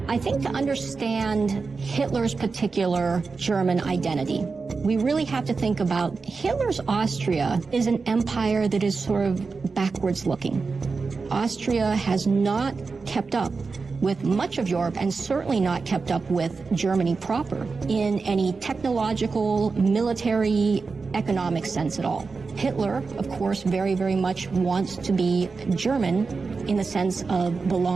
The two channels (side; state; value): left; quieter; 4.5 dB